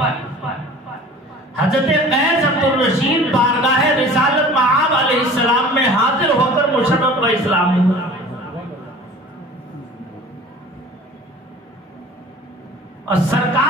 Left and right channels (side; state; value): both; normal; correlation 0.43